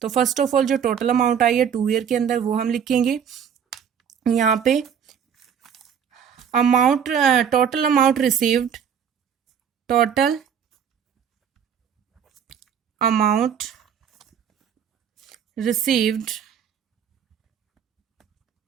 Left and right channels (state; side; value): quieter; left; 7.9 dB